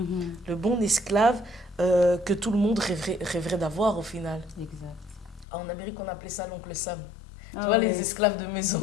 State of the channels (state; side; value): drops out; right; at 5.5 s